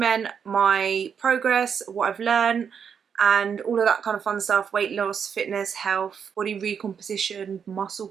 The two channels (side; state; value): left; quieter; 7.2 dB